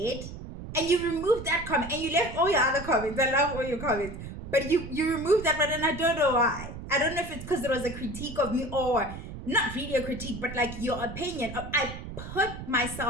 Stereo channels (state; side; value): noise; right; rumble, 10 dB below the sound